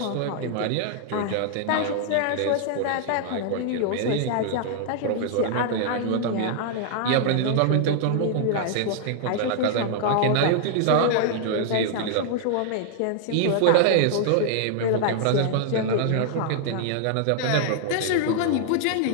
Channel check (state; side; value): different; both; correlation -0.01